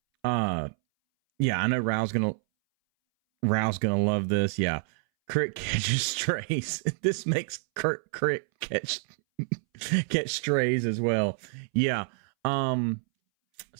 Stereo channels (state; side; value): silent; left; 60 dB below the other